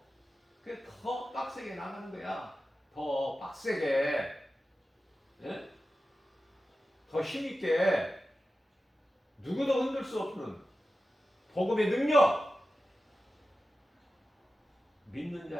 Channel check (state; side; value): normal; both; correlation 0.93